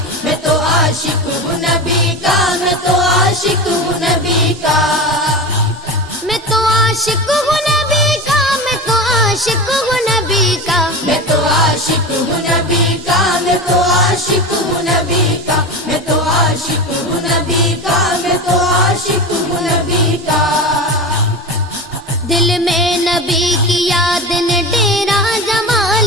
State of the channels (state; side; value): normal; both; correlation 0.26